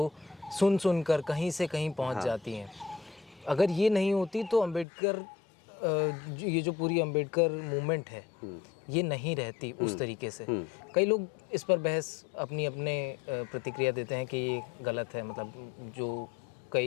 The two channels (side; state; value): right; drops out; at 4.9 s